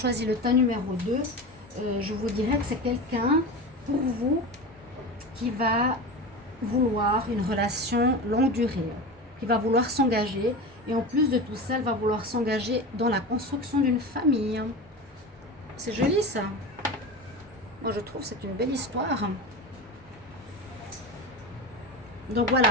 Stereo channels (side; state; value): both; normal; correlation 0.27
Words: le tas numéro 2, je vous dirais que c'est quelqu'un, pour vous, qui va vouloir une relation longue durée, qui va vouloir s'engager. Et en plus de tout ça, elle va vouloir s'engager dans la construction d'une famille. C'est joli ça. Moi je trouve que c'est une belle histoire. Donc